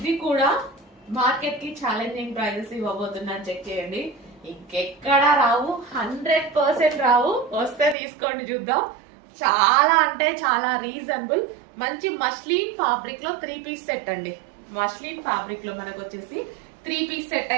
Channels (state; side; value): drops out; left; at 8.0 s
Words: కూడా మార్కెట్ కి ఛాలెంజింగ్ ప్రైజెస్ ఇవ్వబోతున్నా. చెక్ చేయండి, ఇంకెక్కడా రావు, 100% రావు. వస్తే తీసుకోండి, చూద్దాం. చాలా అంటే చాలా రీజనబుల్. మంచి మస్లిన్ ఫ్యాబ్రిక్ లో 3 పీస్ సెట్ అండి. మస్లిన్ ఫ్యాబ్రిక్ లో మనకు వచ్చేసి 3 పీస్ సెట్